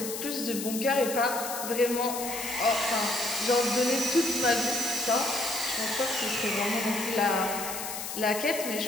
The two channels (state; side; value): noise; left; hiss, 6 dB below the sound